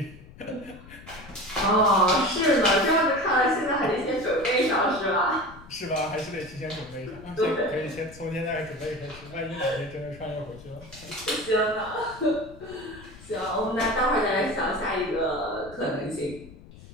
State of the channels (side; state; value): left; noise; rumble, 19 dB below the sound